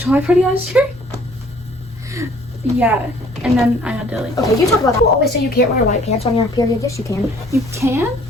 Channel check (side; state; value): both; normal; correlation 0.57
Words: party last year. Yeah, and then I had to like. Okay, you talk about that. People always say you can't wear white pants on your period. Yes, you can. You can.